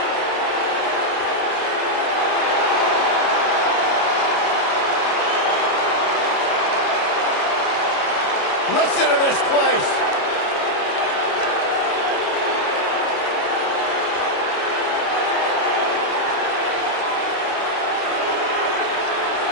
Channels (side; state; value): right; late; 29 ms